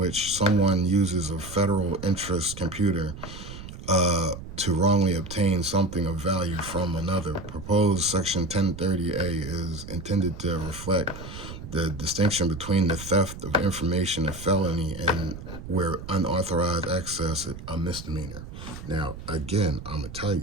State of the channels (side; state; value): right; noise; rumble, 12 dB below the sound